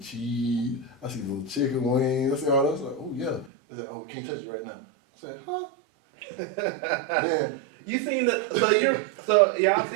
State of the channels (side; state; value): left; drops out; at 3.5 s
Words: I see the little chicken wings, I see all that. I was like, oh yeah. They said, we can't touch it right now. I said, huh? Man. You seen so y'all